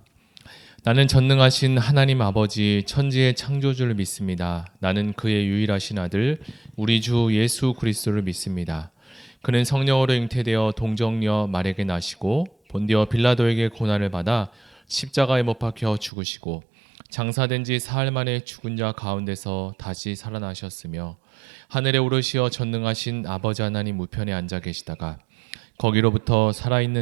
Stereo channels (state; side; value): drops out; left; at 16.1 s